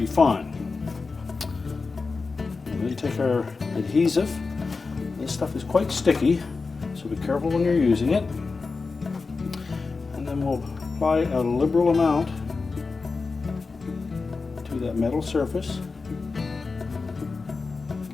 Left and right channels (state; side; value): quieter; right; 4.3 dB